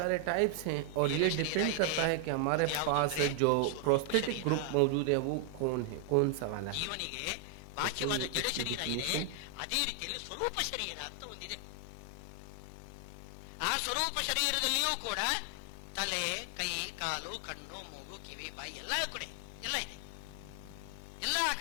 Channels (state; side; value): different; both; correlation 0.00